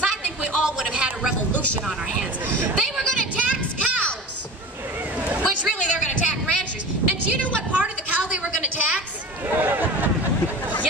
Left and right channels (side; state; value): both; normal; correlation 0.34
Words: I think we all would have had a revolution on our hands. They were going to tax cows, which really they're going to tax ranchers. And do you know what part of the cow they were going to tax?